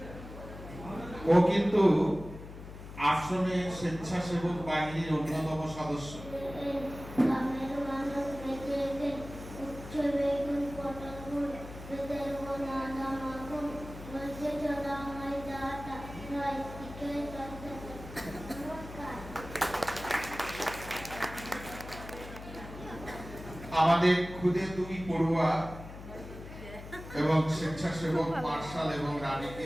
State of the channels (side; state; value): left; noise; hum, 13 dB below the sound